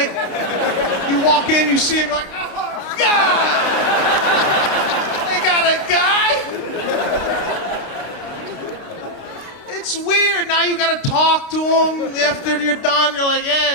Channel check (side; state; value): right; late; 29 ms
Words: You walk in, you see him, you're like, oh, God! They got a guy? It's weird. Now you gotta talk to him after you're done. You're like, yeah,